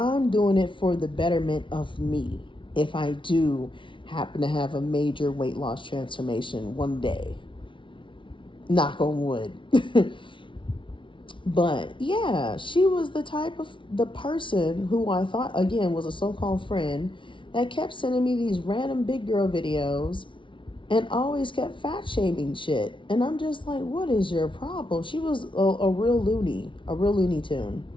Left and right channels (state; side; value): late; right; 0.25 ms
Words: doing it for the betterment of me. If I do happen to have a major weight loss transformation one day, knock on wood. But yeah, she was the person who I thought, again, was a so-called friend that kept sending me these random big girl videos and always kept fat shaming shit. And I'm just like, what is your problem? She was a real Looney Tune.